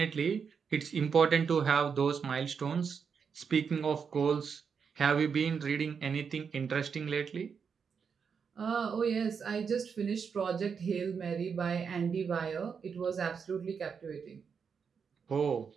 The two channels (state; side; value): quieter; left; 6.3 dB